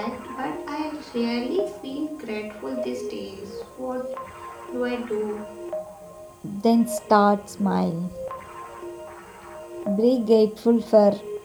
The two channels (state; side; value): identical; both; correlation 1.00